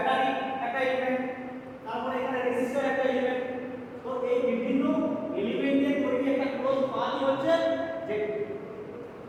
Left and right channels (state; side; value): identical; both; correlation 1.00